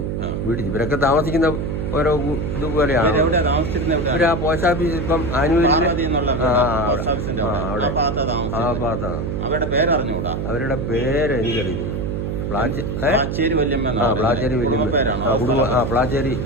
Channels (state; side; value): noise; right; hum, 2 dB below the sound